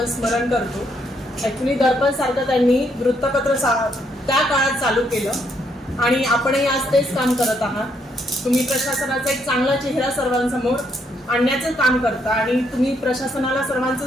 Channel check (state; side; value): normal; both; correlation 0.74